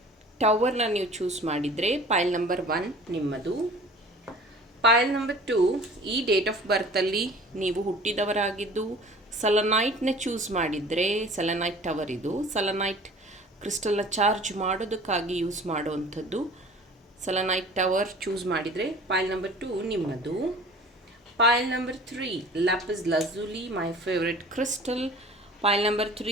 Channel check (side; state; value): both; normal; correlation 0.45